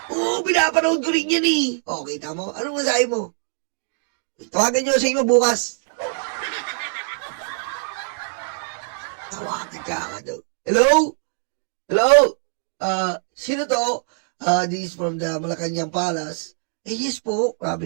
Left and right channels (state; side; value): silent; left; digital silence